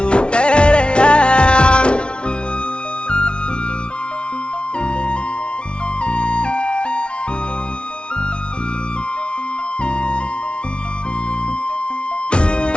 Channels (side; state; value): right; late; 0.058 ms